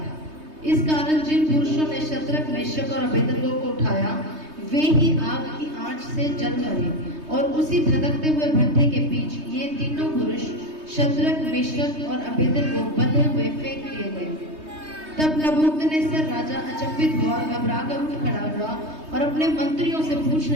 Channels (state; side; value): late; left; 3.2 ms